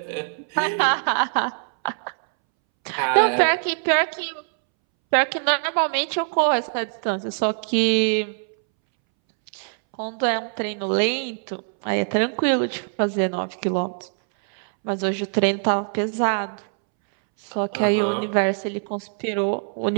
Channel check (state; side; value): silent; left; 63 dB below the other